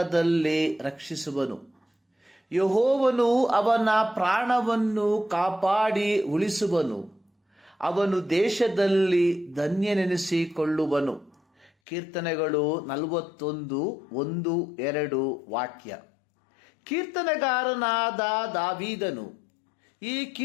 ರಕ್ಷಿಸುವನು. ಯೆಹೋವನು ಅವನ ಪ್ರಾಣವನ್ನು ಕಾಪಾಡಿ ಉಳಿಸುವನು. ಅವನು ದೇಶದಲ್ಲಿ ಧನ್ಯನೆನಿಸಿಕೊಳ್ಳುವನು. ಕೀರ್ತನೆಗಳು 41:1-2 ವಾಕ್ಯ. ಕೀರ್ತನೆಗಾರನಾದ ದಾವೀದನು ಈ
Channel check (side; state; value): right; drops out; at 11.7 s